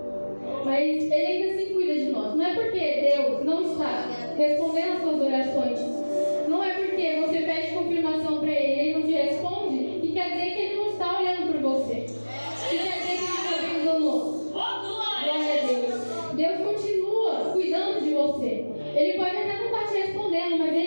Mas Ele ainda assim cuida de nós. Não é porque Deus não está respondendo as suas orações, não é porque você pede confirmação para Ele e Ele não te responde, que quer dizer que Ele não está olhando por você. Que quer dizer que Ele está vendo o nosso. Glória a Deus. Deus continua cuidando de você. Ele pode até não estar te respondendo, mas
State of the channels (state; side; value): inverted; both; correlation -1.00